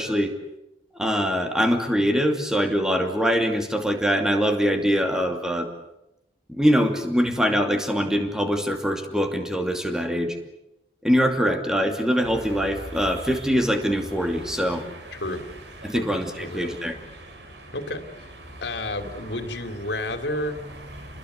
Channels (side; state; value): both; normal; correlation 0.80